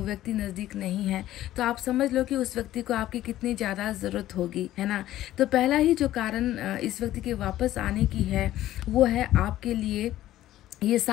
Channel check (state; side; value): quieter; right; 14.0 dB